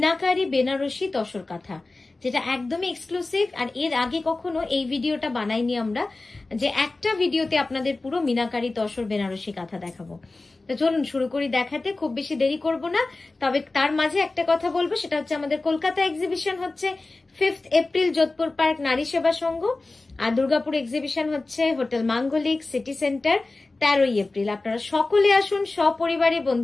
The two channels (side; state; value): right; quieter; 3.3 dB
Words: বেনারসি তসর কাঁথা, যেটা একদমই এক্সক্লুসিভ। আর এর আগে কখনো এই ভিডিওটা বানাইনি আমরা, যে একটা ভিডিওতে আপনাদের পুরো মিনাকারি তসর বেনারসি কাঁথা দেখাবো। তো চলুন শুরু করি দেখাতে, খুব বেশি দেরি করব না। তবে তার মাঝে একটা কথা বলবো, সেটা হচ্ছে আমাদের কলকাতা এক্সিবিশন হচ্ছে 5 এপ্রিল যোধপুর পার্ক নারী সেবা সংঘ, আর দুর্গাপুর এক্সিবিশন হচ্ছে হোটেল মাঙ্গলিক সিটি সেন্টার 13 এপ্রিল। আপনারা সকলে আসুন সপরিবারে